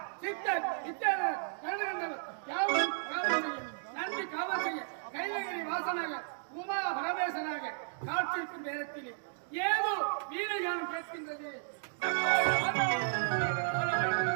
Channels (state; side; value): silent; left; digital silence